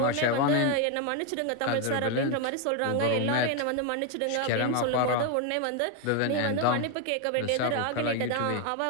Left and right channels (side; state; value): both; different; correlation 0.01